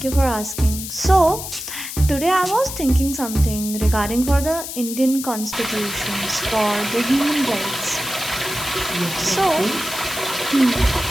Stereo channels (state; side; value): noise; left; hiss, 8 dB below the sound